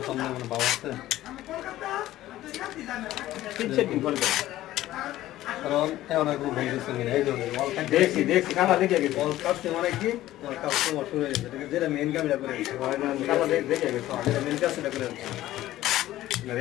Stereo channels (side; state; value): right; quieter; 14.8 dB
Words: মানে ভাব আছে, কারণ এমন এক ভুল গেছে এই ধরনের দেখছি দেখছি কালা দেখে গেছে অল কাছে মানে কি অল কাজ তো শুরু হয়ে গেছে, যেটা মেইন কাজটা করে হয় না কালা দেখে গেছে, যেটা মেইন কাজটা করে